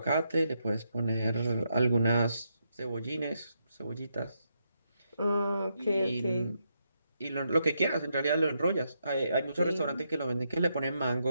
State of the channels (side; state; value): both; inverted; correlation -0.80